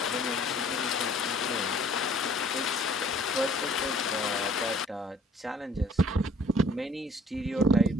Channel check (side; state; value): both; normal; correlation 0.56